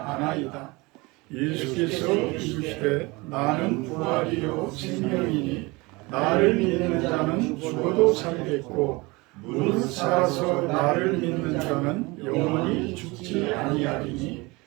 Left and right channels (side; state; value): left; quieter; 24.3 dB